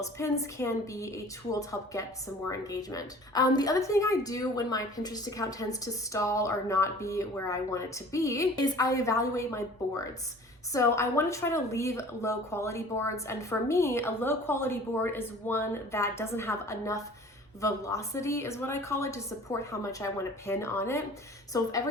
pins can be a tool to help get some more engagement. The other thing I do when my Pinterest account tends to stall or not be where I want it to be is I evaluate my boards. So I want to try to leave low quality boards. And for me, a low quality board is one that doesn't have enough velocity, is what I call it, to support how much I want to pin on it. So if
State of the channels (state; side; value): normal; both; correlation 0.46